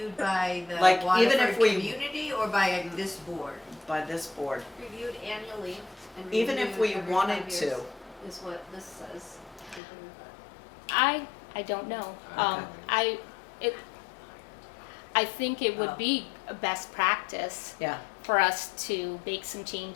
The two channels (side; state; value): right; drops out; at 9.8 s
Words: by the Like, even if Waterford we- community or by this board? by this board. Reviewed annually and Even if reviewed we every wanted 5 to. years is what this says. Something like that. I don't know. Okay. I think it would Oh. be a best practice Yeah, for us to make some